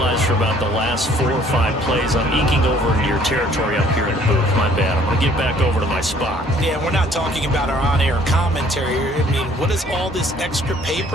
for about the last 4 or 5 plays, I'm eking over into your territory up here in the booth. My bad. I'm going to get back over to my spot. Yeah, we're not talking about our on-air commentary. I mean, what is all this extra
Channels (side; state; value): both; normal; correlation 0.59